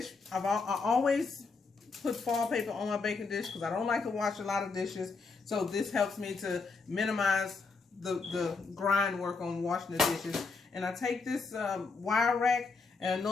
I always put foil paper on my baking dish because I don't like to wash a lot of dishes. So this helps me to minimize the grind work on washing the dishes. And I take this wire rack, and I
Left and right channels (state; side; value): quieter; right; 4.3 dB